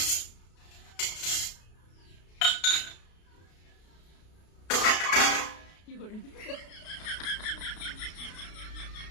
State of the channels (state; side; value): late; right; 33 ms